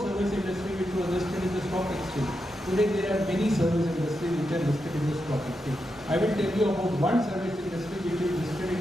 industry which was listed in the stock exchange. Today there are many service industries which are listed in the stock exchange. I will tell you about one service industry which is listed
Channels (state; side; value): normal; both; correlation 0.86